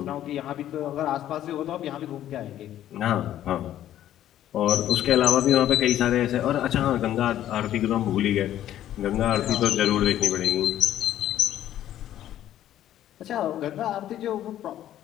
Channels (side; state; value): right; quieter; 12.1 dB